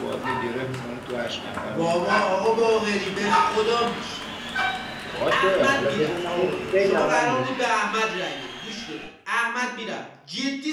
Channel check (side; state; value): both; identical; correlation 1.00